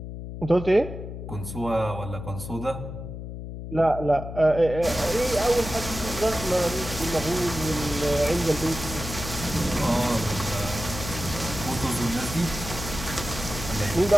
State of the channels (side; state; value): left; noise; hum, 9 dB below the sound